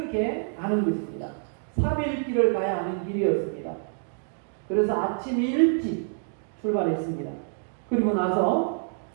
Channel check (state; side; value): silent; left; 60 dB below the other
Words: 가는 것입니다. 3일 길을 가야 하는 길이었습니다. 그래서 아침 일찍 출발했습니다. 그리고 나서